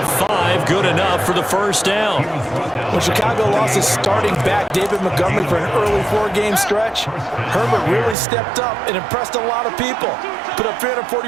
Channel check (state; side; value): drops out; left; at 8.2 s